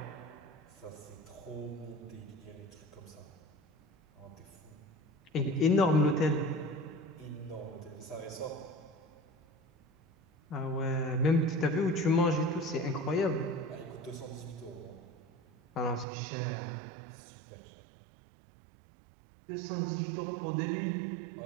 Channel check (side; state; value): left; drops out; at 16.1 s